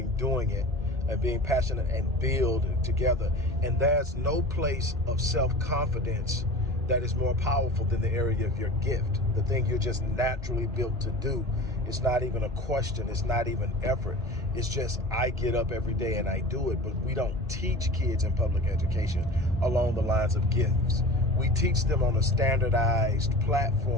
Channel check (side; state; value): both; normal; correlation 0.35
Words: doing it, and being passionate and build together. And there's no place of self-confidence that is more powerful than the area of your gift, the thing you're just naturally built to do. It's not even a question. It's not even effort. It's just, I get up every day and I do it. But we don't teach kids in public education along the lines of gifts. We teach them on a standardized